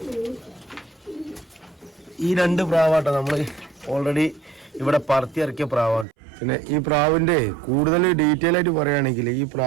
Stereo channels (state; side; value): drops out; left; at 6.1 s